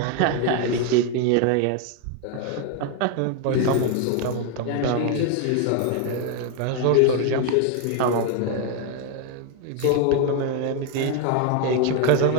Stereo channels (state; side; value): different; both; correlation 0.01